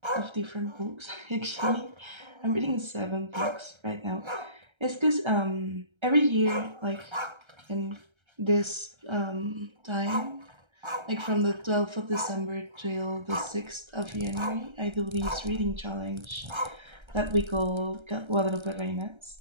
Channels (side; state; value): left; late; 1.3 ms